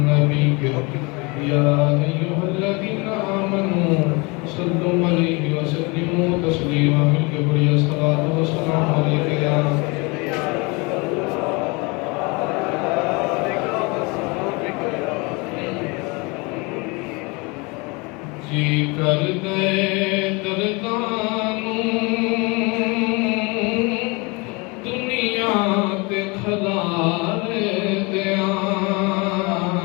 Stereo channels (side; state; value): right; quieter; 27.8 dB